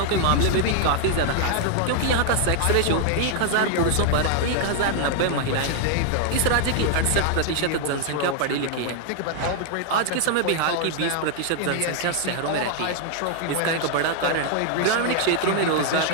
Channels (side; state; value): both; different; correlation 0.00